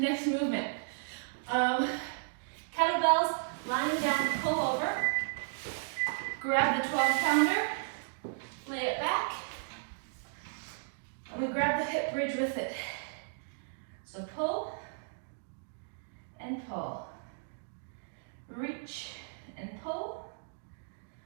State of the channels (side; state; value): left; silent; digital silence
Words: movement. Kettlebells, lying down, pull over. Grab the 12-pounder, lay it back. I'm going to grab the hip bridge with it. So pull and pull. Reach and pull.